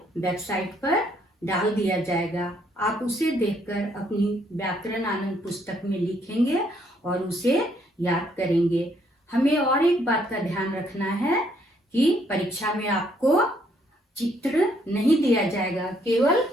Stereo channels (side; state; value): both; normal; correlation 0.69